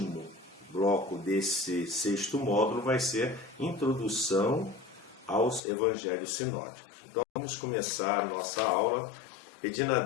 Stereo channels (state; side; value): drops out; right; at 5.6 s